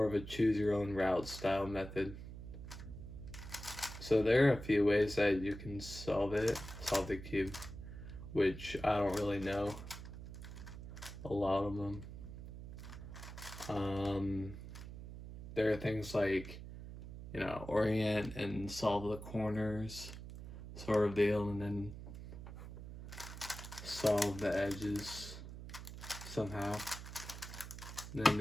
of a choose your own route style method. So there are a few ways that you can solve the cube, which I don't really know a lot of them. There are things like, you know, orient and solve the corners sort of deal, and then solve the edges somehow. And then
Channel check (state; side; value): noise; right; hum, 11 dB below the sound